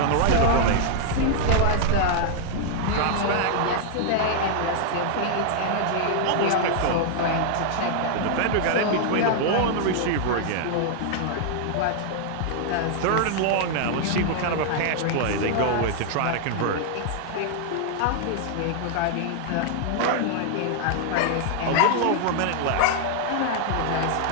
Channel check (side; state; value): both; different; correlation 0.00